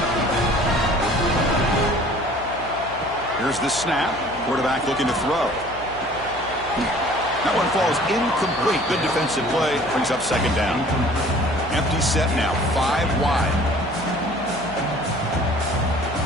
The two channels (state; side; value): noise; left; hum, 18 dB below the sound